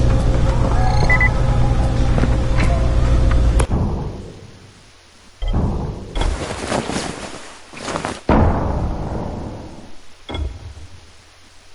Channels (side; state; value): both; identical; correlation 1.00